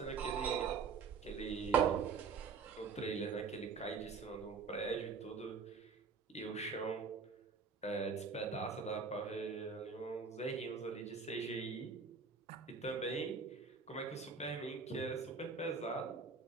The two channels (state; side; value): quieter; left; 5.4 dB